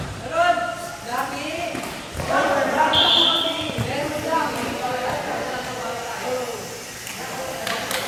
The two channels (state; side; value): identical; both; correlation 1.00